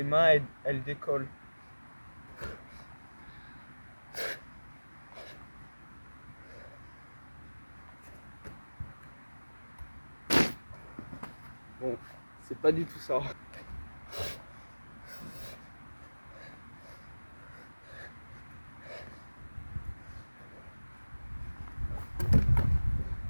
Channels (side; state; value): both; inverted; correlation -1.00